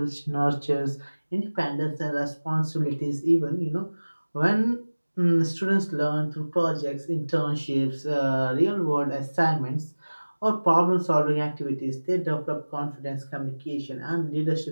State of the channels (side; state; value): both; inverted; correlation -1.00